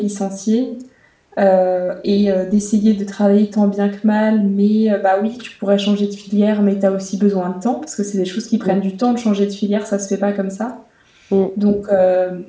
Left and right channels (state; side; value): identical; both; correlation 1.00